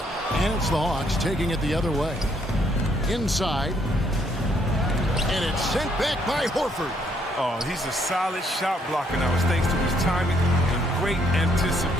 And it's the Hawks taking it the other way. Inside. And it's sent back by Horford. Oh, he's a solid shot blocker now. It's thanks to his timing and great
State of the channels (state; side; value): normal; both; correlation 0.69